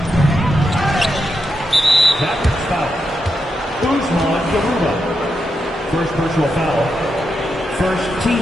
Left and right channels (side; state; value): both; normal; correlation 0.85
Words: First personal foul. First